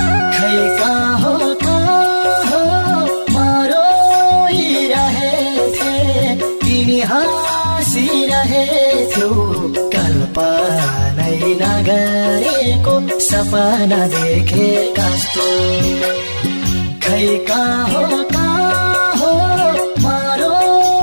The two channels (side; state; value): both; inverted; correlation -1.00